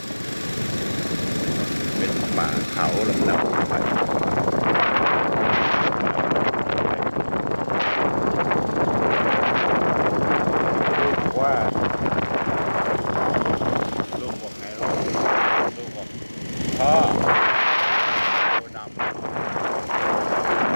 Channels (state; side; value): inverted; both; correlation -1.00